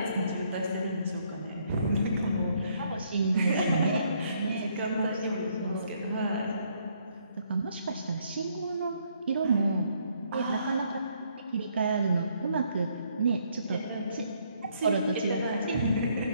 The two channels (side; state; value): both; inverted; correlation -0.70